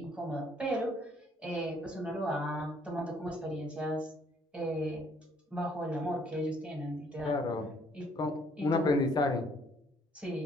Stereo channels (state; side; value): normal; both; correlation 0.64